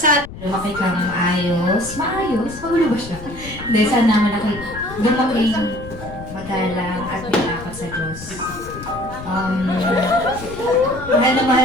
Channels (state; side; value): noise; left; rumble, 14 dB below the sound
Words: Lumaki kang maayos. Maayos? Magulo ba siya? Hindi, sana malaki. Lumaki magalang at malakot sa Diyos. Mahal na